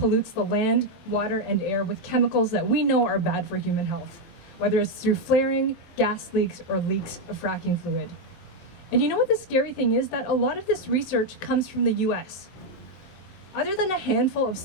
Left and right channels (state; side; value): late; right; 23 ms